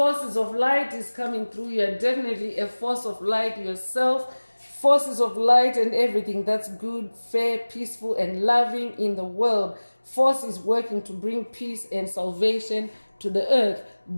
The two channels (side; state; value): both; inverted; correlation -1.00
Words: of light is coming through. You're definitely a force of light yourself. Forces of light and everything that's good, fair, peaceful, and loving in the world. Force is working to bring peace and salvation to the earth.